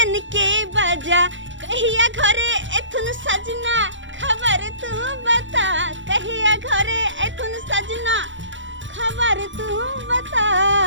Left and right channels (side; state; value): left; late; 0.55 ms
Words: के बजा। कहिया घरे एथुन सजना खबर तू बता, कहिया घरे एथुन सजना खबर तू बता।